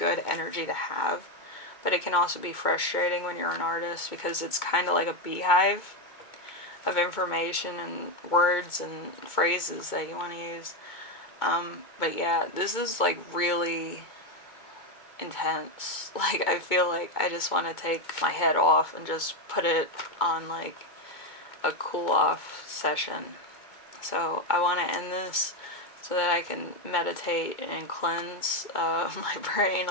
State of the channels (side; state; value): right; late; 2.2 ms